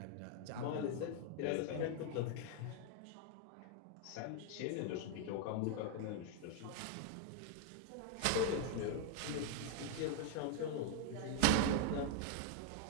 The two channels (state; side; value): different; both; correlation 0.00